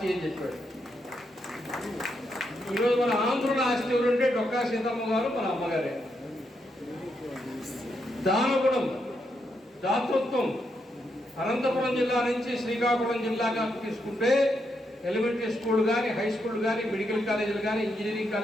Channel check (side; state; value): both; normal; correlation 0.81